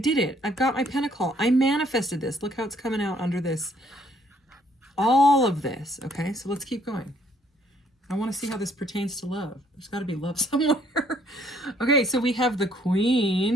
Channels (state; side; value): normal; both; correlation 0.65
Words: it. I've got my pentacle. I manifested this. Look how it's coming out under this. All of this, okay? So let's keep going. I want to see how this pertains to love. There's got to be love somewhere. Okay, so we have the